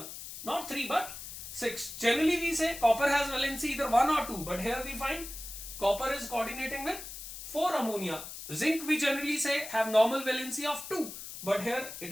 Not 3 but 6. Generally we say copper has valency either 1 or 2, but here we find copper is coordinating with 4 ammonia. Zinc we generally say have normal valency of 2, but here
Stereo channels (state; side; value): noise; left; hiss, 10 dB below the sound